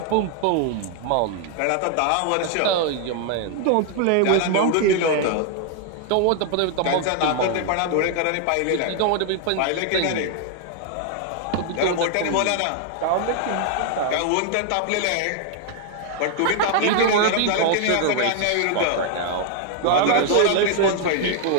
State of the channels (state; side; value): different; both; correlation 0.00